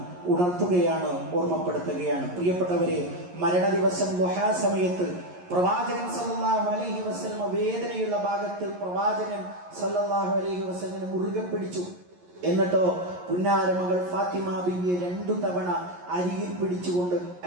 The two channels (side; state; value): left; late; 11 ms